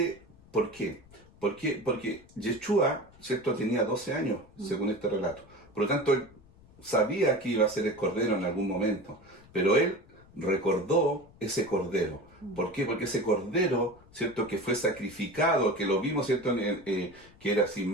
¿por qué? Porque Yeshua, ¿cierto?, tenía 12 años, según este relato. Por lo tanto, él sabía que iba a ser el cordero en algún momento, pero él recordó ese cordero. ¿Por qué? Porque ese cordero, ¿cierto?, que fue sacrificado, que lo vimos, ¿cierto?, que era sin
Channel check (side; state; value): left; noise; rumble, 25 dB below the sound